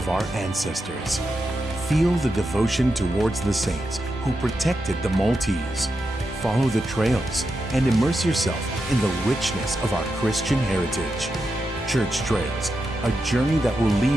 our ancestors. Feel the devotion towards the saints who protected the Maltese. Follow the trails and immerse yourself in the richness of our Christian heritage. Church Trails, a journey that will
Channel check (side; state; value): both; normal; correlation 0.87